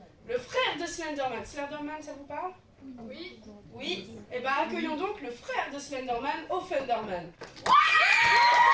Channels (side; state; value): both; identical; correlation 1.00